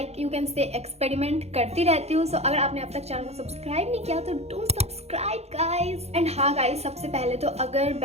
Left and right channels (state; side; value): late; left; 0.31 ms